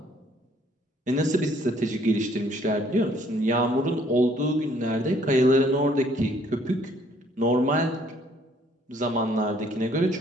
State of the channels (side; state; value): both; normal; correlation 0.62